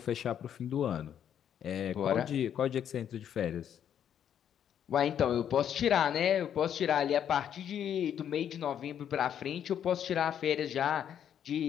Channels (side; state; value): right; quieter; 9.3 dB